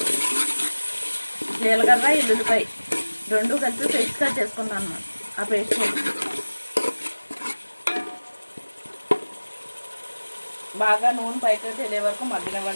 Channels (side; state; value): both; inverted; correlation -1.00